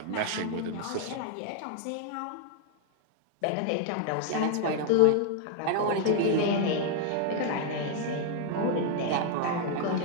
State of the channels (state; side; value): different; both; correlation 0.00